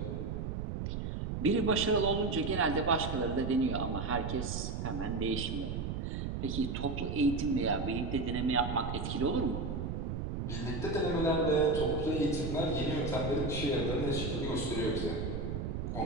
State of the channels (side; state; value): right; noise; rumble, 3 dB below the sound